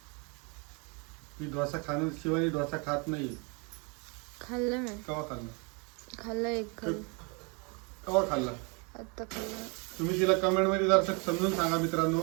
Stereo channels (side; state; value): left; quieter; 32.5 dB